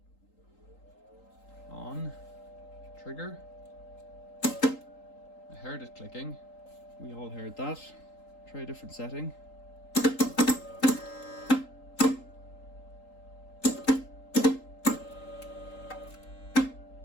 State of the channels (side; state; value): right; late; 3.8 ms